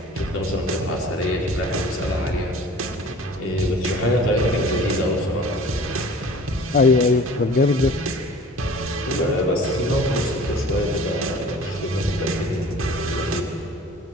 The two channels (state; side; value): normal; both; correlation 0.45